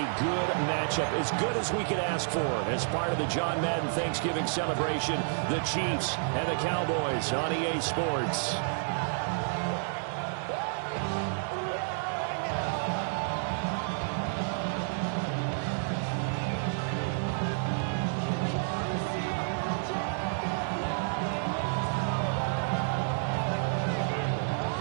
good matchup, as good as we could ask for, as part of the John Madden Thanksgiving celebration, the Chiefs and the Cowboys on EA Sports.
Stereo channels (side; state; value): left; silent; digital silence